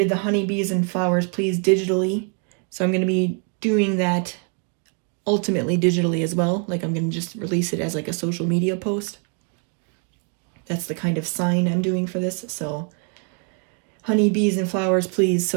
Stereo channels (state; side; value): quieter; left; 39.9 dB